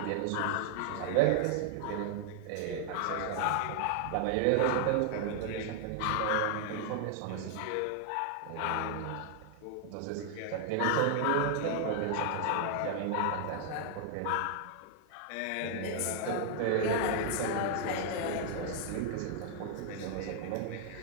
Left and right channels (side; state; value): both; different; correlation 0.00